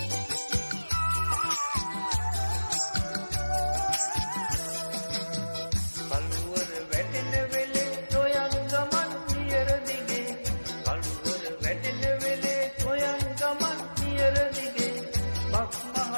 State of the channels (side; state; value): both; inverted; correlation -1.00